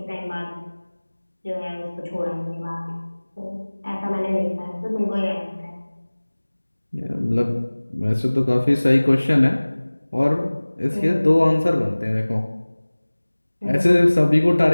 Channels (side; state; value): both; inverted; correlation -1.00